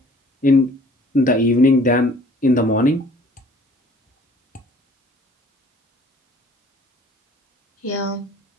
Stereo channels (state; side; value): normal; both; correlation 0.54